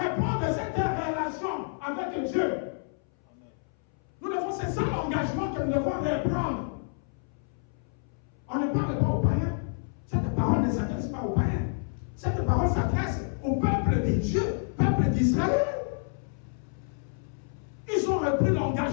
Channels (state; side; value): silent; right; 59 dB below the other